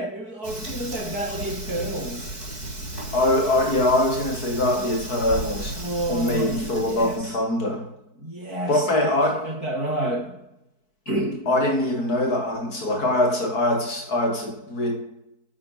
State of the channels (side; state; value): right; late; 4.6 ms